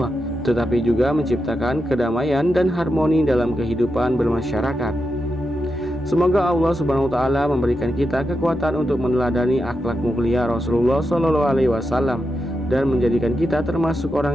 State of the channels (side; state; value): both; normal; correlation 0.87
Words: tetapi juga menciptakan kedamaian dan harmoni dalam kehidupan bermasyarakat. Semoga Allah Subhanahu wa taala memberikan kita kekuatan untuk meneladani akhlak mulia Rasulullah SAW dan menjadikan kita termasuk